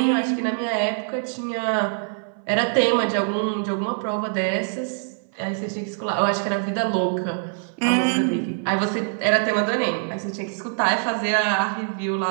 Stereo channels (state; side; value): silent; left; 60 dB below the other